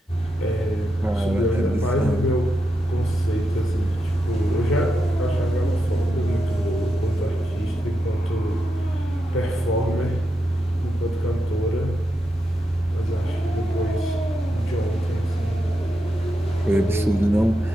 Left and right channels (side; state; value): both; normal; correlation 0.86